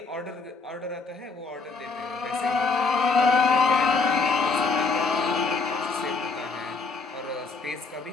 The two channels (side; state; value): right; quieter; 4.3 dB